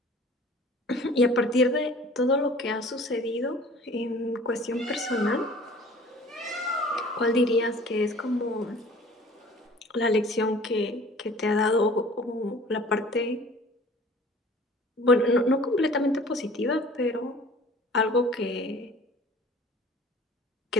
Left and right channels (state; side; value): normal; both; correlation 0.47